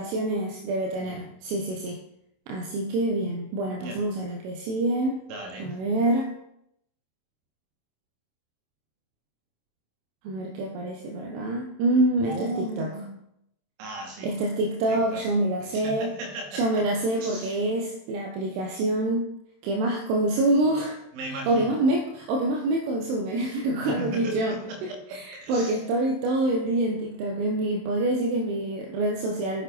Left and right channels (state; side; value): late; left; 27 ms